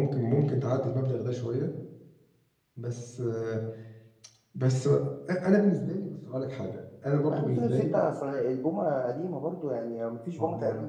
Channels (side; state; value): both; identical; correlation 1.00